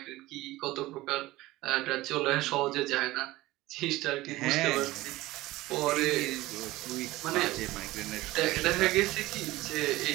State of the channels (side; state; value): left; quieter; 18.2 dB